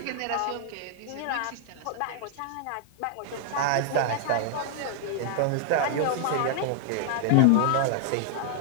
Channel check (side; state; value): both; different; correlation 0.00